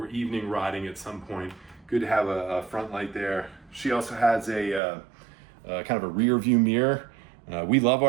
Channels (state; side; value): drops out; left; at 4.8 s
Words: evening riding at some point. Good to have a front light there. She also has a kind of a rear view mirror. We love